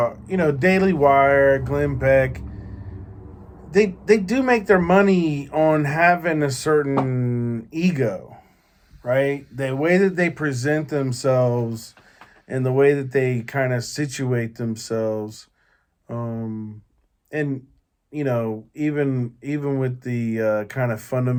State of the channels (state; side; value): identical; both; correlation 1.00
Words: Daily Wire, Glenn Beck, they do make their money on having a certain ego, right? The way that they present themselves and the way that they kind of situate themselves, and even with the kind of